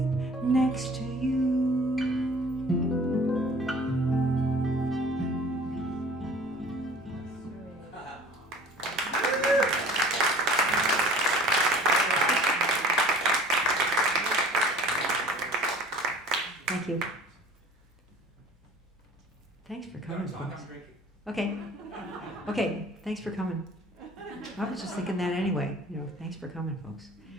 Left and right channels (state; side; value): normal; both; correlation 0.47